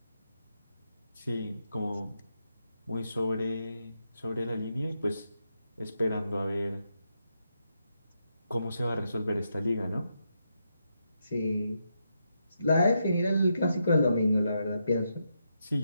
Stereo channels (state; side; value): inverted; both; correlation -0.82